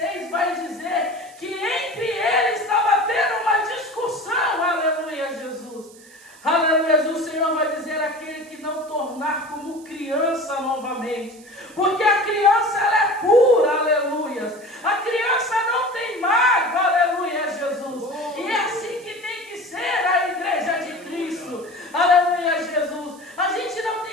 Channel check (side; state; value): right; noise; hiss, 23 dB below the sound